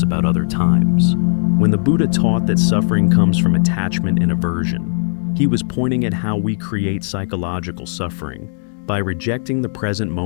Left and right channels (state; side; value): silent; right; digital silence